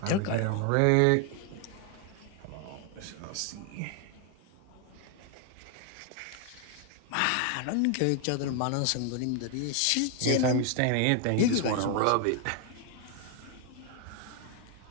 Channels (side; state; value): both; different; correlation 0.00